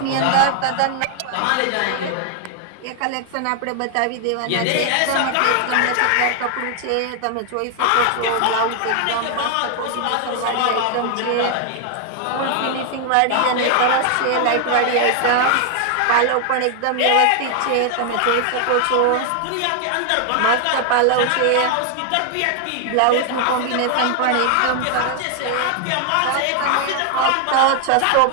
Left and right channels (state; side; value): different; both; correlation 0.00